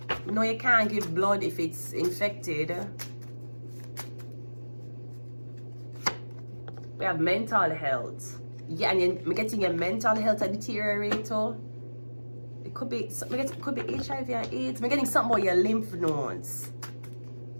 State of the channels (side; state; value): both; inverted; correlation -1.00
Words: No, you can't give blood if it's infected. We have mental health. Yeah, and we're getting your mental health a deteriorator. It could be HIV and AIDS. We're getting something about your lymph nodes.